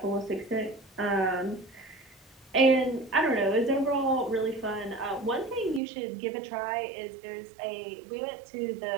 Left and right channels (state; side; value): drops out; left; at 5.8 s